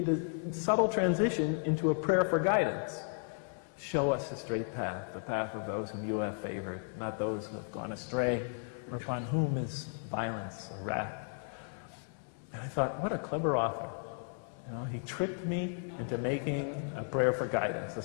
a subtle transition into a prayer for guidance. Show us the straight path, the path of those whom you have favored, not those who have gone astray, or upon whom is violence or wrath. And I thought, what a clever author. You know, he tricked me into making a prayer for guidance, a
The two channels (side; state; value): right; silent; 55 dB below the other